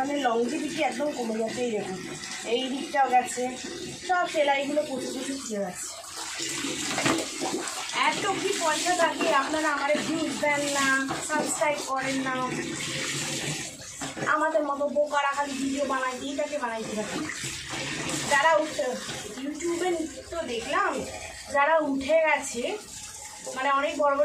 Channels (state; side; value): identical; both; correlation 1.00